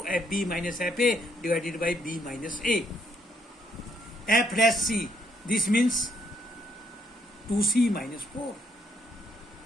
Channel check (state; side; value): normal; both; correlation 0.71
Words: fb minus fa divided by b minus a. f dash c, this means 2c minus 4.